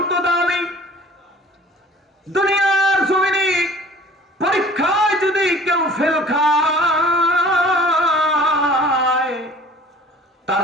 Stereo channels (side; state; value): both; normal; correlation 0.48